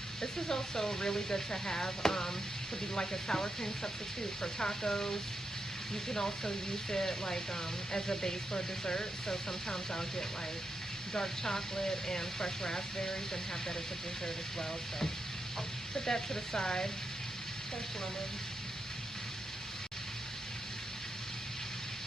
This is also really good to have to be like a sour cream substitute for tacos. You can also use it like as a base for dessert. So sometimes I'll get like dark chocolate and fresh raspberries and have that as a dessert as well. So put that to the side. Fresh lemon.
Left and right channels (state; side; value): normal; both; correlation 0.85